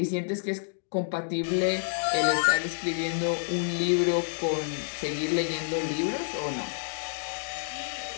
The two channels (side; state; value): right; silent; digital silence